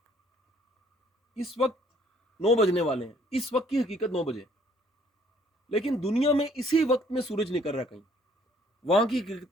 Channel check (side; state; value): both; normal; correlation 0.62